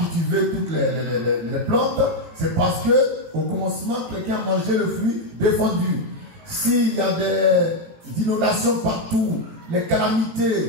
toutes les plantes, c'est parce que au commencement, quelqu'un a mangé le fruit défendu. S'il y a des inondations partout, les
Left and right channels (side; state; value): left; late; 17 ms